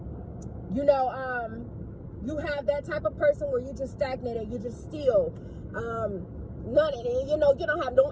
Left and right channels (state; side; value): identical; both; correlation 1.00